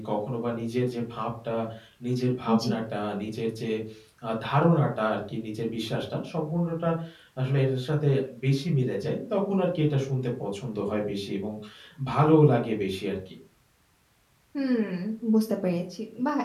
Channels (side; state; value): both; identical; correlation 1.00